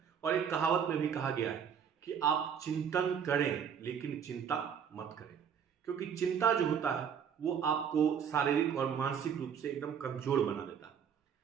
और एक कहावत में भी कहा गया है कि आप चिंतन करें लेकिन चिंता मत करें, क्योंकि चिंता जो होता है वो आपको शारीरिक और मानसिक रूप से एकदम कमजोर बना देता है।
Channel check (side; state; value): left; quieter; 7.6 dB